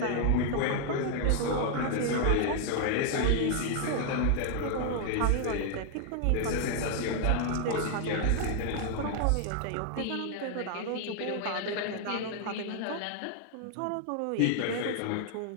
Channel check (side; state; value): both; different; correlation 0.00